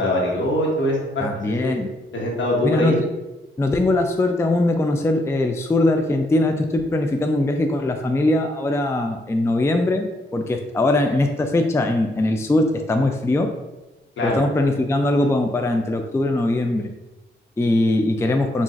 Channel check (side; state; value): both; normal; correlation 0.75